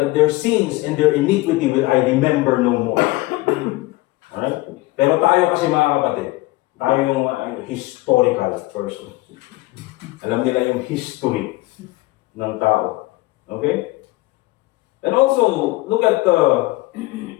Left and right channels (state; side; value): quieter; right; 19.8 dB